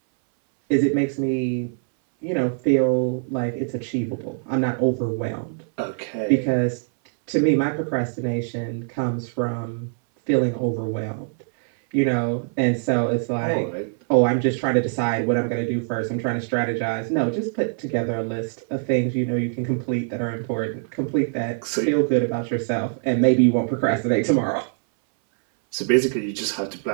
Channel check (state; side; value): silent; left; 60 dB below the other